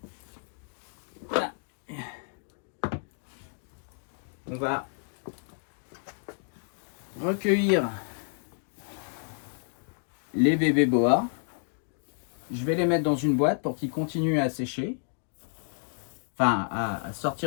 voilà. On va recueillir les bébés boas. Je vais les mettre dans une boîte pour qu'ils continuent à sécher. Enfin, à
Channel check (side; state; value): right; silent; 58 dB below the other